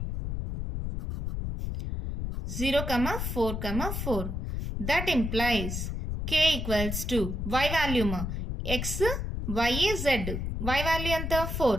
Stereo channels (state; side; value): noise; left; rumble, 3 dB below the sound